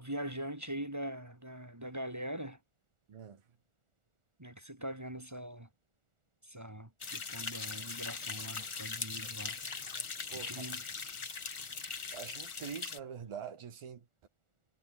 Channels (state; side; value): late; left; 1.4 ms